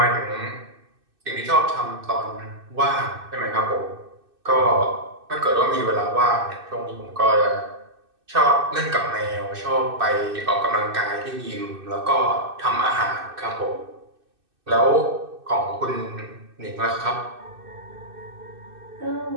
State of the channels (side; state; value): left; late; 2.6 ms